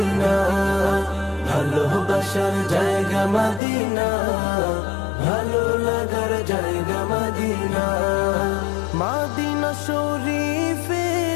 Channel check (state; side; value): drops out; right; at 3.6 s